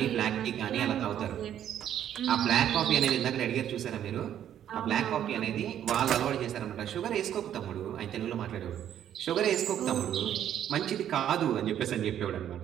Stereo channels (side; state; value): left; quieter; 10.4 dB